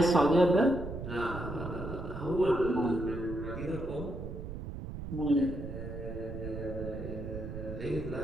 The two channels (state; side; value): noise; right; rumble, 8 dB below the sound